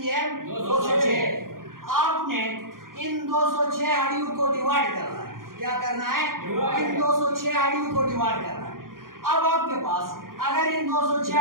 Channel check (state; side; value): late; left; 0.91 ms